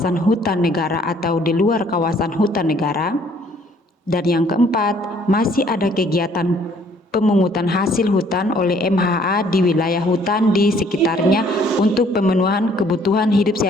hutan negara atau di luar kawasan hutan negara. Dan yang keempat, masih ada kegiatan pemungutan hasil hutan oleh MHA di wilayah hutan di sekitarnya untuk pemenuhan kebutuhan hidup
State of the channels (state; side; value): normal; both; correlation 0.61